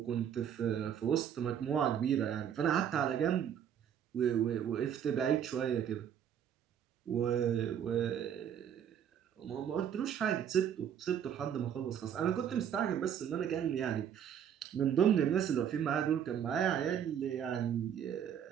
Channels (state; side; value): quieter; left; 9.0 dB